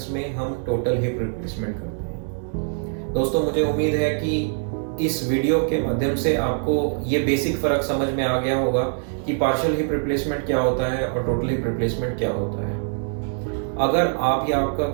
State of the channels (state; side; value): silent; left; 63 dB below the other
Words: में हम टोटल हिप रिप्लेसमेंट करते हैं। दोस्तों, मुझे उम्मीद है कि इस वीडियो के माध्यम से आपको ये बेसिक फ़र्क समझ में आ गया होगा कि पार्शियल हिप रिप्लेसमेंट क्या होता है और टोटल हिप रिप्लेसमेंट क्या होता है। अगर आप या आपका